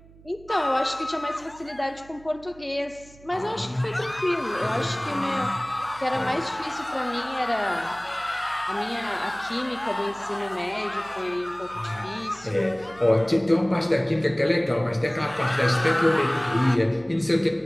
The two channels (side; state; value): right; noise; hum, 23 dB below the sound